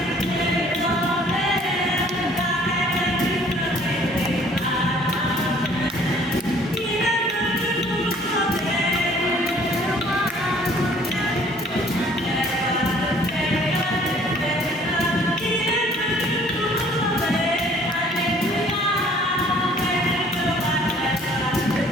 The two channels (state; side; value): normal; both; correlation 0.56